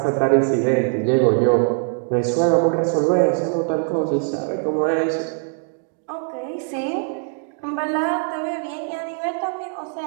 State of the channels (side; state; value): left; silent; 63 dB below the other